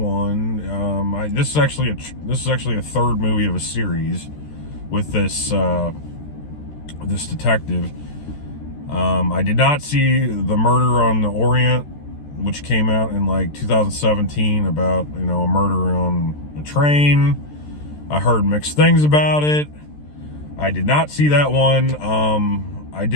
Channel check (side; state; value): right; late; 13 ms